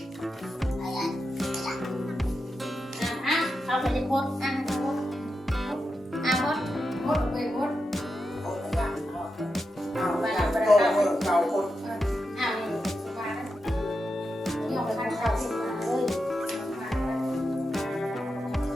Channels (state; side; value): normal; both; correlation 0.88